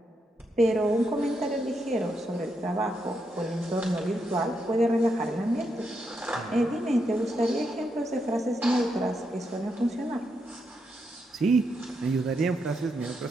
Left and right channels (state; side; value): normal; both; correlation 0.82